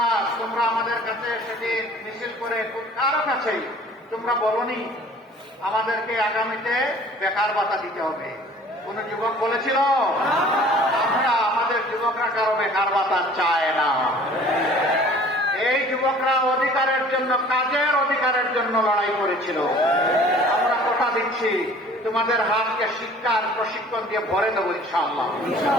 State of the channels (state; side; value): normal; both; correlation 0.49